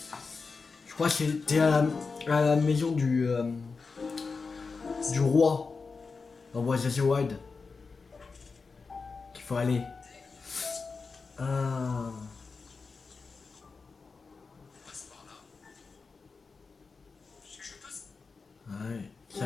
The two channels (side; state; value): right; quieter; 4.6 dB